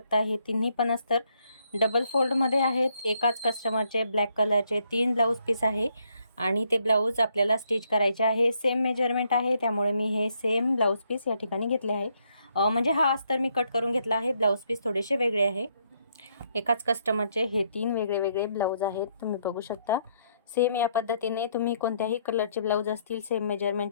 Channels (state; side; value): inverted; both; correlation -0.73